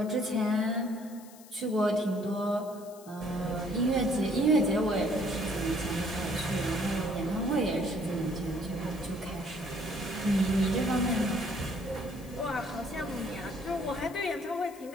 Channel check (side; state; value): left; noise; hiss, 21 dB below the sound